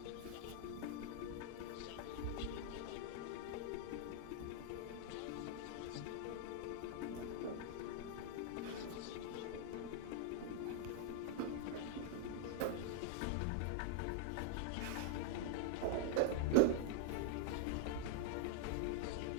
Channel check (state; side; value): different; both; correlation 0.00